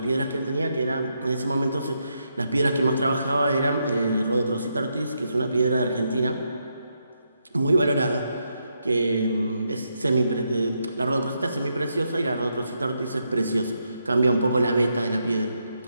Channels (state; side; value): inverted; both; correlation -0.81